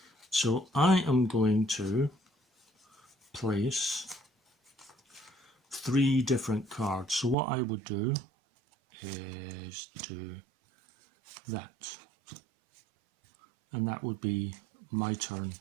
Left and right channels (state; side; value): drops out; left; at 7.4 s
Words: So I am going to place 3 different cards. So what I would do is do that. And that would be my turn